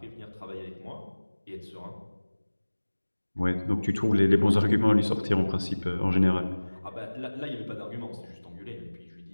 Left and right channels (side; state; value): both; inverted; correlation -1.00